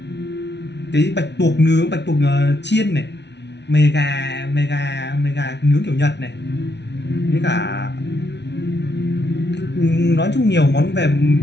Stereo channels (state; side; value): late; right; 0.50 ms